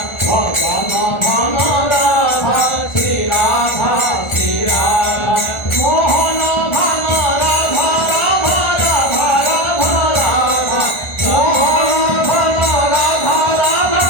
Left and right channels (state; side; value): late; right; 1.4 ms